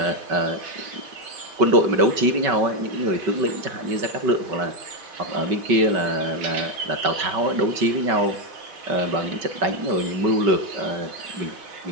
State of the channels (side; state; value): left; late; 5.3 ms